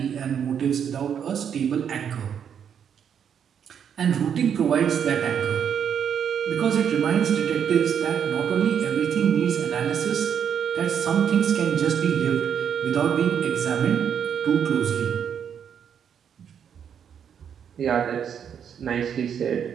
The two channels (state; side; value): quieter; left; 8.1 dB